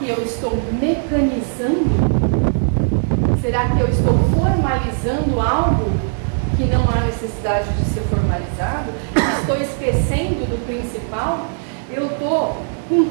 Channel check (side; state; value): left; silent; 66 dB below the other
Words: eu estou mecanizando? Será que eu estou formalizando algo que não há necessidade de ser formalizado? Estou esquecendo do principal? Eu estou